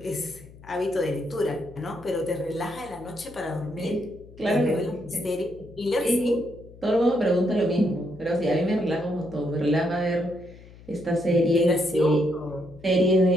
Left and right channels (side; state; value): left; noise; hum, 20 dB below the sound